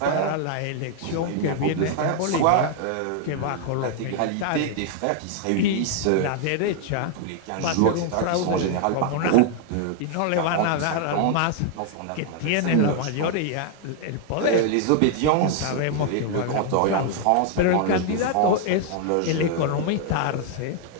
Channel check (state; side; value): different; both; correlation 0.00